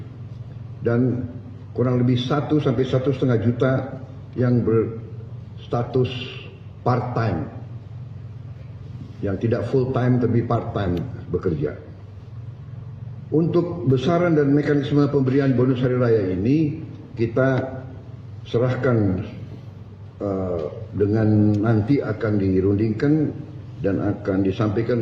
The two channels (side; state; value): both; identical; correlation 1.00